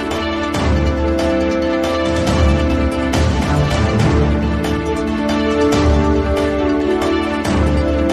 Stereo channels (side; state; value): both; identical; correlation 1.00